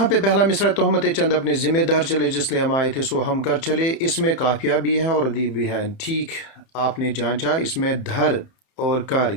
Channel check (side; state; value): right; late; 31 ms